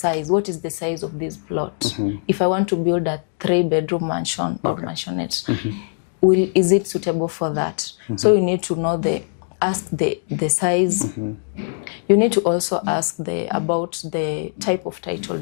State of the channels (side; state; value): right; silent; 65 dB below the other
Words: What is the size of this plot? If I want to build a 3-bedroom mansion or mansionette, is it suitable for that? So you need to know ask the size. You need to also ask about the type of title